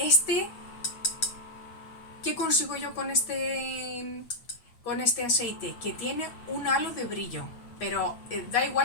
¿Qué consigo yo con este aceite? Que tiene un halo de brillo, pero da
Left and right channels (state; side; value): late; right; 8.4 ms